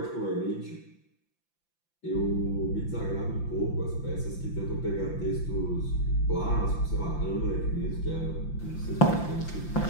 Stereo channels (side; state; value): right; late; 5.9 ms